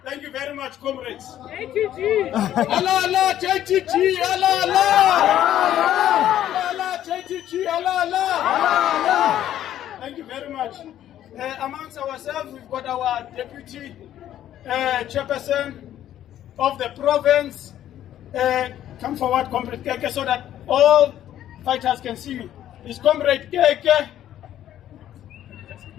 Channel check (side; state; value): right; quieter; 11.8 dB